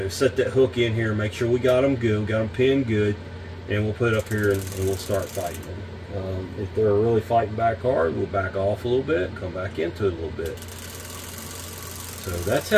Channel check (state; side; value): identical; both; correlation 1.00